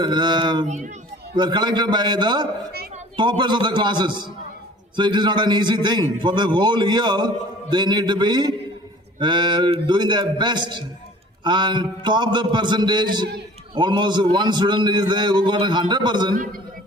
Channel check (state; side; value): normal; both; correlation 0.48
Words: collected by the toppers of the classes. So it is not an easy thing. For the whole year, they need to be doing their best and top the percentage. Almost one student is there who got